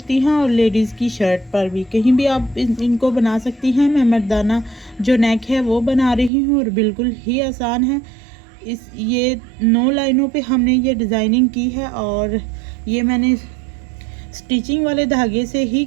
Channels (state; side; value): drops out; left; at 6.3 s